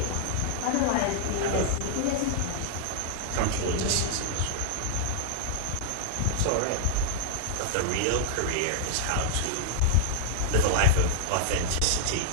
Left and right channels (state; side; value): different; both; correlation -0.01